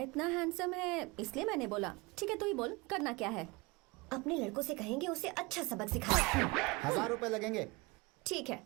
हैंडसम है इसलिए मैंने बोला। ठीक है, तू ही बोल, करना क्या है? अपने लड़कों से कहेंगे उसे अच्छा सबक सिखाए। 1000 रुपए लगेंगे। ठीक है।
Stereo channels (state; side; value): quieter; left; 25.1 dB